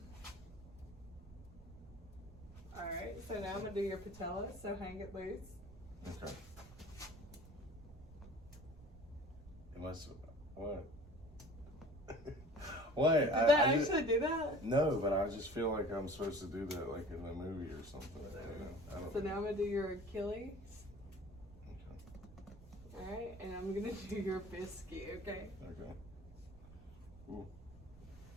Alright, so now I'm going to do your patella, so hang it loose. Okay. Unless, what? What? Did that actually do that? No, but I just feel like I'm supposed to do that like in the movie or something. You know? I don't So now I'm going to do your Achilles. Okay. Alright, and I'm going to do your biscuit, okay? Okay. Ooh.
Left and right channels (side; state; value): right; noise; rumble, 19 dB below the sound